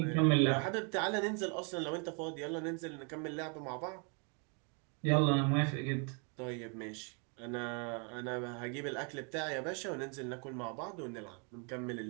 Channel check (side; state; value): left; quieter; 36.9 dB